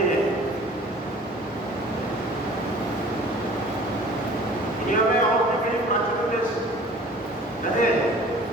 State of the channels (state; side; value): normal; both; correlation 0.47